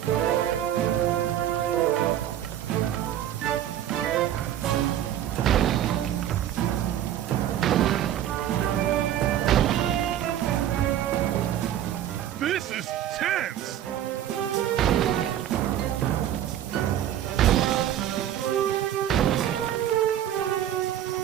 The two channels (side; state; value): left; quieter; 11.4 dB